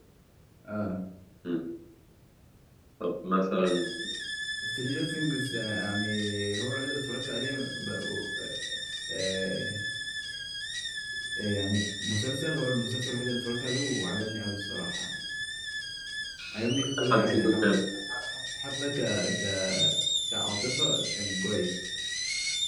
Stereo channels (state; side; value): identical; both; correlation 1.00